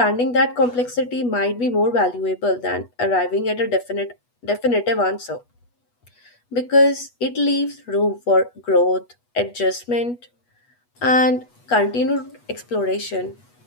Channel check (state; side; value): late; right; 8.2 ms